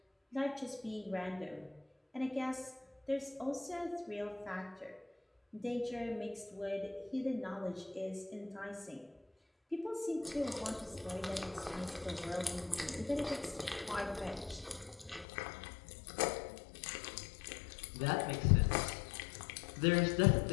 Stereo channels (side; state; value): right; drops out; at 15.2 s